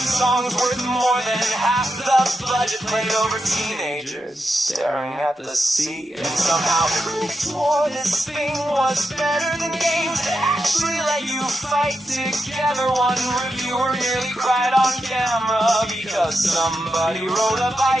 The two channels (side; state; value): both; normal; correlation 0.86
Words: songs worth more than half the budget played over teenagers staring at the sea. And somehow critics swore this thing was better than games that actually let you fight together. One reviewer nearly cried on camera because somebody rode a